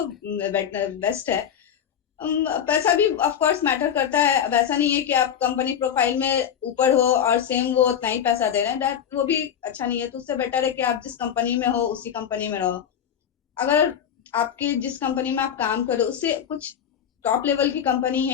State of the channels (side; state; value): right; quieter; 8.8 dB